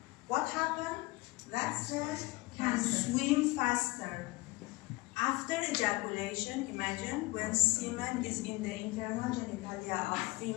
what happens? That cell can swim faster. After ejaculation, imagine when semen is in the internal genitalia of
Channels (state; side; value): quieter; right; 21.7 dB